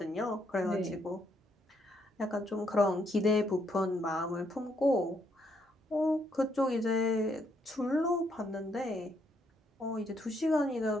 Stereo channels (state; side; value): normal; both; correlation 0.74